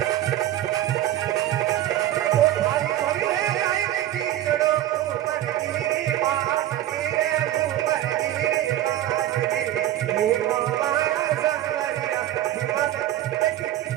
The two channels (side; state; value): left; quieter; 13.2 dB